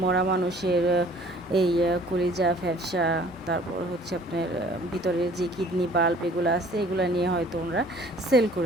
মরা মানুষের এই কলিজা ফ্যাপসা, তারপর হচ্ছে আপনার ভিতরের যে কিডনি বাল্ব এগুলো আছে, এগুলো নিয়ে হয়তো ওরা সেল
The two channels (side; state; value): both; normal; correlation 0.53